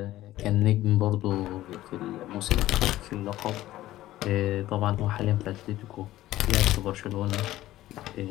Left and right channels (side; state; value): right; quieter; 15.2 dB